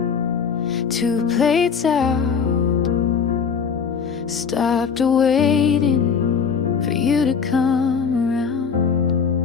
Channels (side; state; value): right; quieter; 6.3 dB